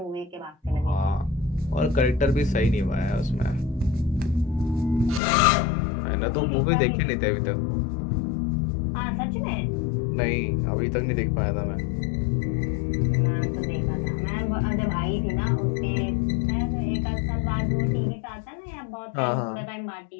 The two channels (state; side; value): drops out; right; at 5.2 s